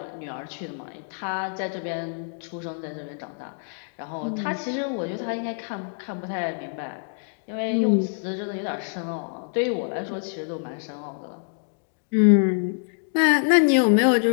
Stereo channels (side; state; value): right; silent; 61 dB below the other